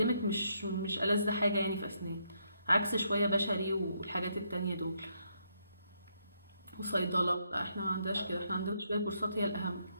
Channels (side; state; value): both; inverted; correlation -0.76